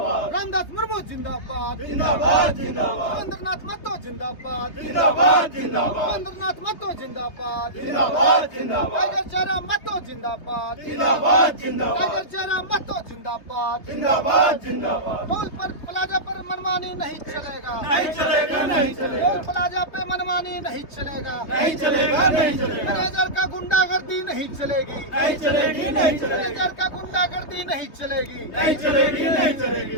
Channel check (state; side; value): late; right; 3.2 ms